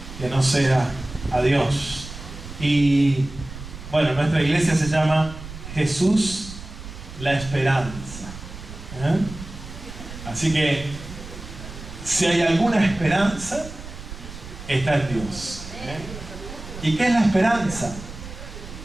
que no sea a Dios. Y bueno, nuestra iglesia se llama Jesús la Esperanza. Así que si hay alguna esperanza, está en Dios. ¿Y qué es la esperanza?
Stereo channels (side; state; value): right; noise; rumble, 13 dB below the sound